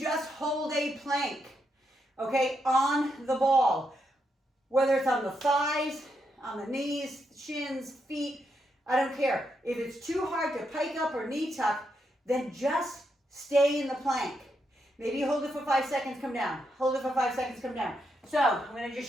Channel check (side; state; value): both; normal; correlation 0.81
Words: hold a plank, okay, on the ball, whether it's on the thighs, on the knees, shins, feet, I don't care. If it's too hard to pike up or knee tuck, then just stay in the plank. Maybe you hold it for 5 seconds, come down. Hold it for 5 seconds, come down. So I'm going to